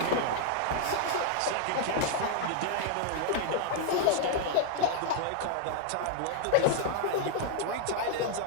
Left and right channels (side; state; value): both; different; correlation 0.00